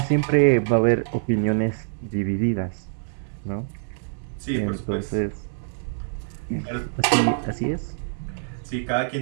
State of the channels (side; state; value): left; silent; 62 dB below the other